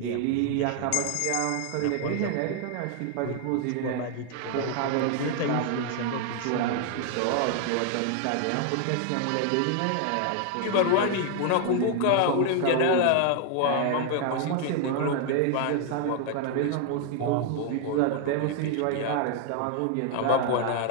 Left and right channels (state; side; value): different; both; correlation 0.00